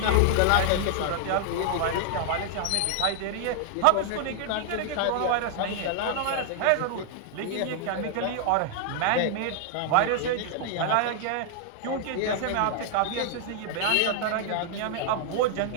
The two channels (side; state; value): both; different; correlation -0.01